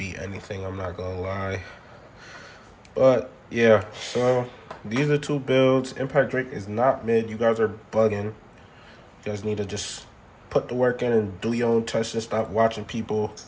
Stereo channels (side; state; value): both; identical; correlation 1.00